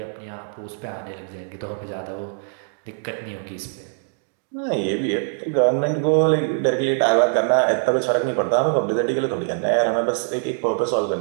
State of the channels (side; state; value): left; silent; digital silence